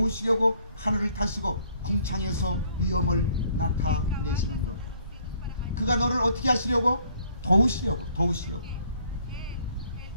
하늘을 타시고 궁창에서 위엄을 나타내시는도다. 그가 너를 어떻게 하시려고? 도우시려고.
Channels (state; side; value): inverted; both; correlation -0.63